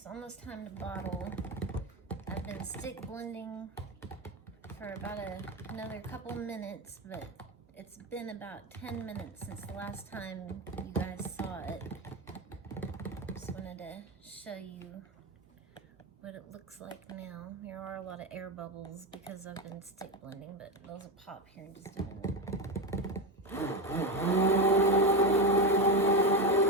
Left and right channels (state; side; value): normal; both; correlation 0.15